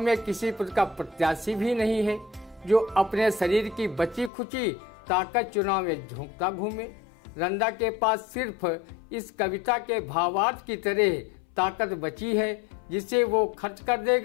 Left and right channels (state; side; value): drops out; right; at 4.3 s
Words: में किसी पद का प्रत्याशी भी नहीं है जो अपने शरीर की बची खुची ताकत चुनाव में झोंकता घूमे। रंदा के पास सिर्फ इस कविता के भावार्थ की तरह ताकत बची है, जिसे वो खर्च कर